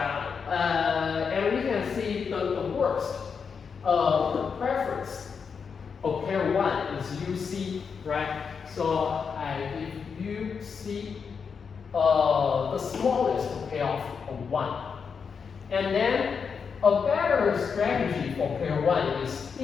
And we can see the worst preference of player 1 is UC, right? So I give UC the smallest payoff of 1. And then a better strategy for player 1 is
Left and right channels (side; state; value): right; quieter; 6.0 dB